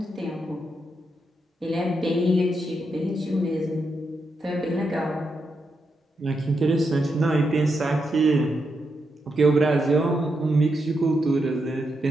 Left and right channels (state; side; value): normal; both; correlation 0.83